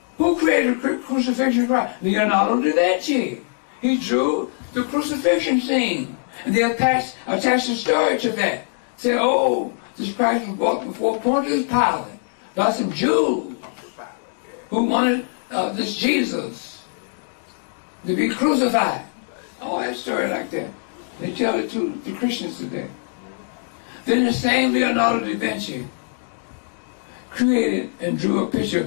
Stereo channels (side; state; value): right; silent; digital silence